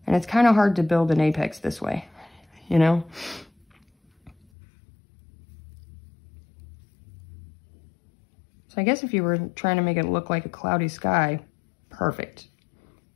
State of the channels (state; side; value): drops out; right; at 4.4 s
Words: And it's kind of hard to build an apex this way, you know? So I guess if you were trying to make it look like a cloudy sky, perfect.